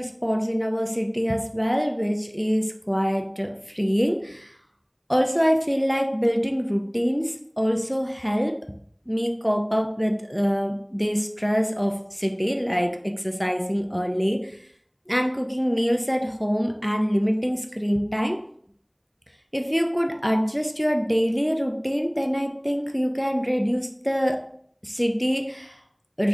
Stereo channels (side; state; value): both; identical; correlation 1.00